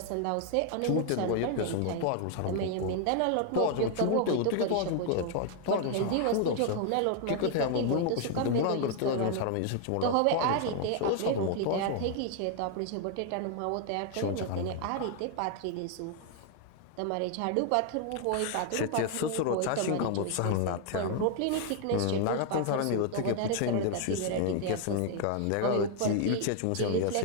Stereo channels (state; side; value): different; both; correlation 0.00